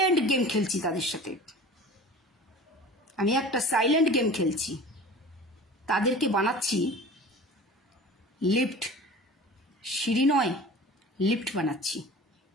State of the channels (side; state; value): both; normal; correlation 0.39